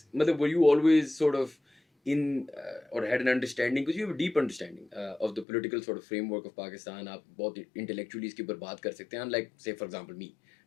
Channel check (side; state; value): right; drops out; at 5.5 s